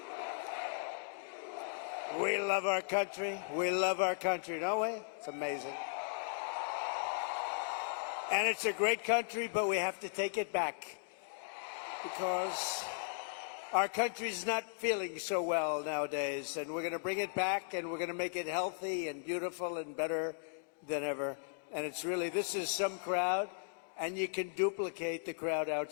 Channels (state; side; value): silent; right; digital silence